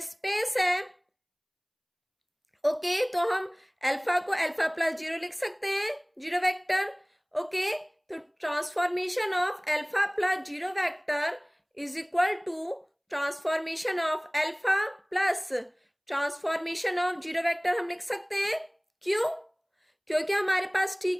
स्पेस है। ओके, तो हम अल्फा को अल्फा प्लस जीरो लिख सकते हैं, जीरो वेक्टर। ओके, तो transformation of alpha plus zero vector is equal to transformation of alpha plus transformation of zero vector हम लिख सकते हैं। क्यों, क्योंकि हमारे पास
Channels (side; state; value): both; identical; correlation 1.00